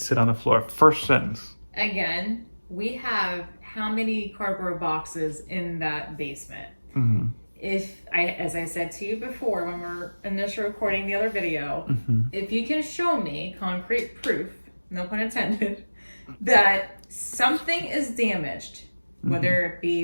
to sit on the floor. First sentence. Again, we have how many cardboard boxes in that basement? Mm-hmm. As I said to you before when we were initially recording the other video, if you can show me concrete proof, no pun intended, that something is damaged, whether it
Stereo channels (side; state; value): both; inverted; correlation -1.00